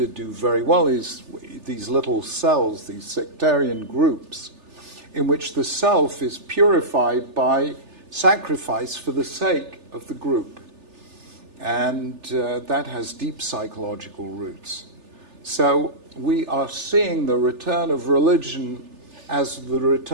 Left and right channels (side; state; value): left; late; 3.4 ms